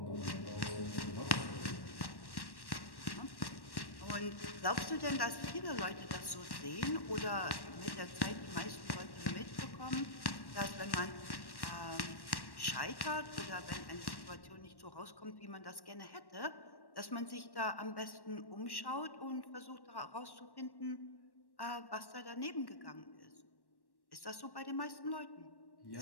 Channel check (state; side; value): late; right; 1.1 ms